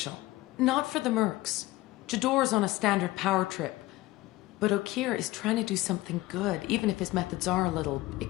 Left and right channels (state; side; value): quieter; right; 18.5 dB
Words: Not for the mercs. Jador's on a standard power trip. But Okir is trying to do something good, even if his methods are a little